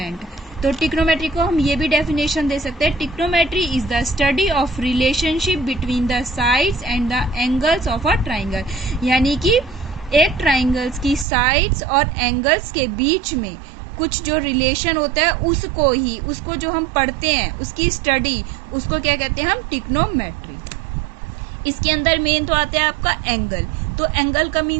तो ट्रिग्नोमेट्री को हम ये भी डेफिनेशन दे सकते हैं, trigonometry is the study of relationship between the sides and the angles of a triangle, यानी कि एक ट्राइंगल्स की साइड्स और एंगल्स के बीच में कुछ जो रिलेशन होता है उसको जो हम पढ़ते हैं, उसकी स्टडी, उसको क्या कहते हैं हम? ट्रिग्नोमेट्री। इसके अंदर मेन तो आता है आपका एंगल। तो एंगल का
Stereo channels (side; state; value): left; drops out; at 11.2 s